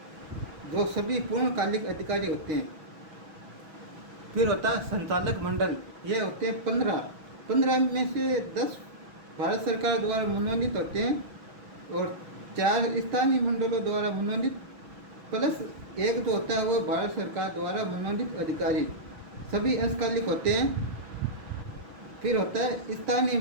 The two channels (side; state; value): left; late; 6.1 ms